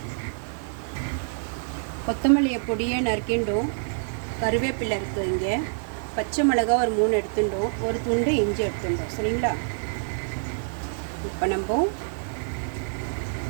கொத்தமல்லியை பொடியை நறுக்கிண்டோம், கருவேப்பிலை இருக்குது, இங்கே பச்சை மிளகாய் ஒரு 3 எடுத்துட்டோம், ஒரு துண்டு இஞ்சி எடுத்துட்டோம். சரிங்களா? இப்போ நம்ம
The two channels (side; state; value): left; silent; 56 dB below the other